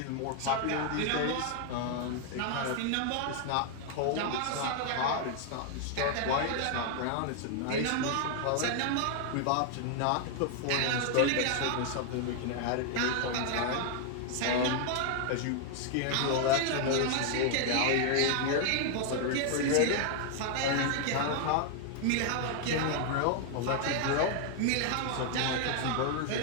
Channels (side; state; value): both; different; correlation 0.00